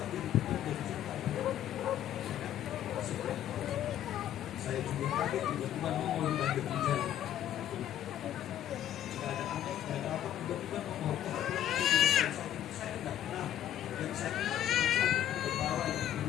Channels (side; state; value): right; quieter; 11.3 dB